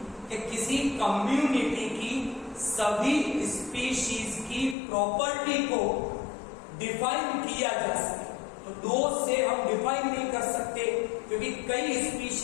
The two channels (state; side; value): drops out; right; at 4.8 s